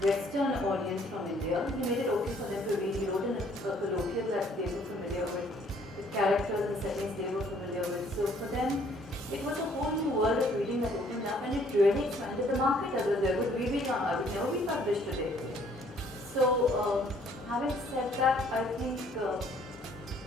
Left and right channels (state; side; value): normal; both; correlation 0.62